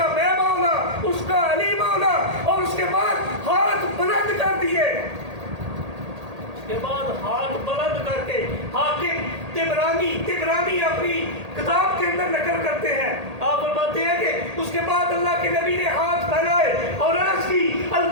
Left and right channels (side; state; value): left; late; 1.8 ms